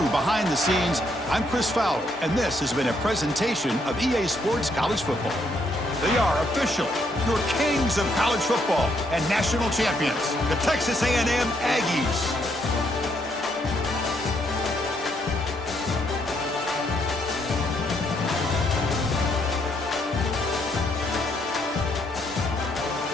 behind the scenes, I'm Chris Fowler, and this has been a presentation of EA Sports College Football. They are officially your kings of college football and national champions, the Texas A&M Aggies.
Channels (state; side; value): normal; both; correlation 0.73